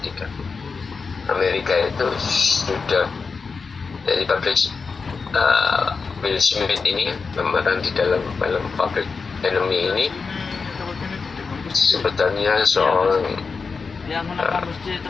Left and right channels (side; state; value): right; quieter; 4.9 dB